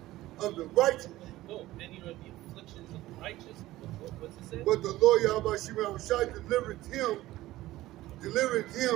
of the righteous. no, many are the afflictions of the righteous. What's it say? But the Lord Yahweh delivered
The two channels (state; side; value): quieter; left; 16.4 dB